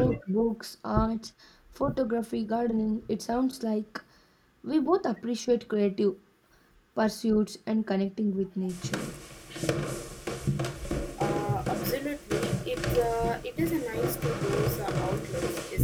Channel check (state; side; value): identical; both; correlation 1.00